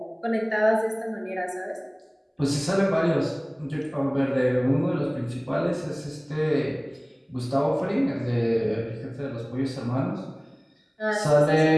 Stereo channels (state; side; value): identical; both; correlation 1.00